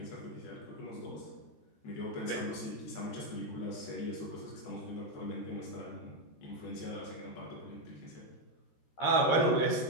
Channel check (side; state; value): right; late; 13 ms